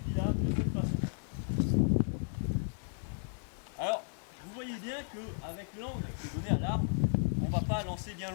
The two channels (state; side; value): silent; right; digital silence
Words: de cette façon. Alors, vous voyez bien qu'avec l'angle qui est donné à l'arme, on ne va pas lancer bien